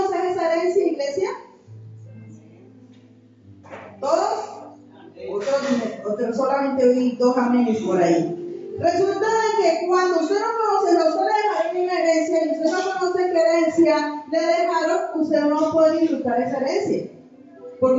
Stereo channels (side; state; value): both; identical; correlation 1.00